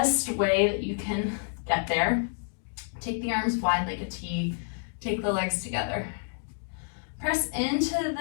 way that you can get there, take the arms wide like a T, take the legs together. Press into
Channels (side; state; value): right; silent; 59 dB below the other